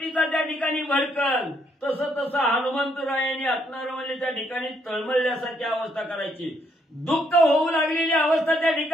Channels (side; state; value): both; normal; correlation 0.72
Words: त्या ठिकाणी भडकल तसं तसं हनुमंतरायाने असणारं म्हणजे त्या ठिकाणी तळमळल्यासारखी अवस्था करायची. दुःख होऊ लागलेली अवस्था त्या